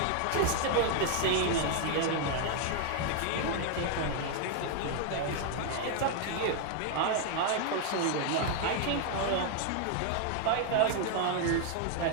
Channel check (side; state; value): both; different; correlation 0.00